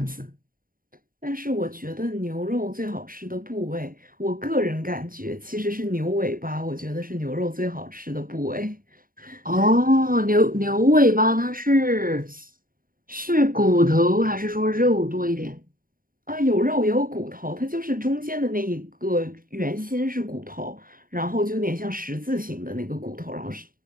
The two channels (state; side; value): late; left; 0.41 ms